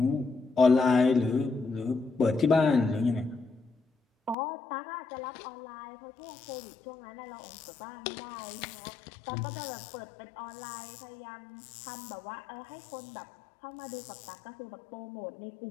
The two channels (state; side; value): drops out; right; at 4.4 s